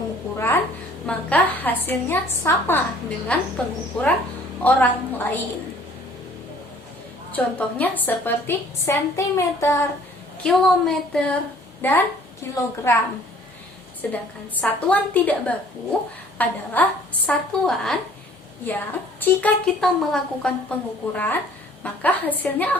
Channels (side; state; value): both; normal; correlation 0.55